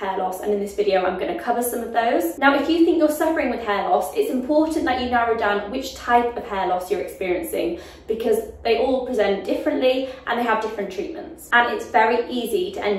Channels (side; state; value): both; identical; correlation 1.00